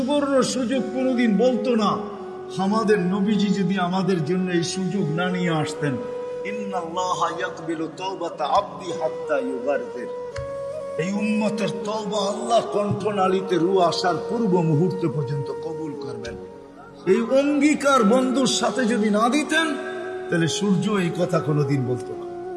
সুযোগ কোনোদিন বলতো না। আমাদের নবীজি যদি আমাদের জন্য এই সুযোগ না নিয়ে আসতেন, ইন্নাল্লাহা ইয়াকবিলু তাওবাতা আবদি হাত্তা ইউগারফির, এই উম্মতের তওবা আল্লাহ কণ্ঠনালীতে রূহ আসার পূর্ব মুহূর্ত পর্যন্ত কবুল করবেন। এই অঙ্গীকার বন্ধুর সাথে যদি না দিতেন, তাহলে সূর্য এই কথা কোনোদিন বলতো না।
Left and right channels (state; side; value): identical; both; correlation 1.00